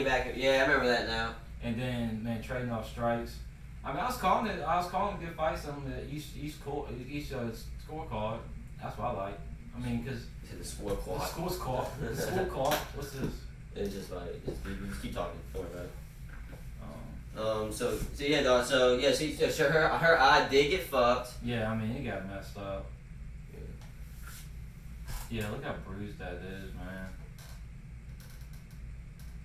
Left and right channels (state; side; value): identical; both; correlation 1.00